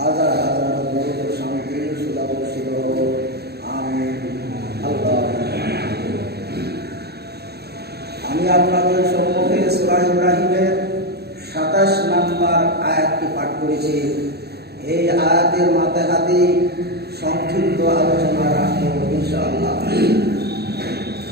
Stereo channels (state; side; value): late; left; 0.47 ms